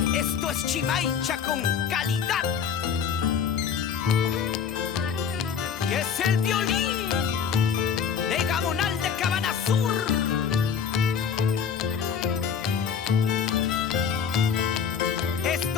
Esto es Chimaicha con calidad. Y es el violín de Gabonal de Cabana Sur.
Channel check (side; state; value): right; quieter; 7.1 dB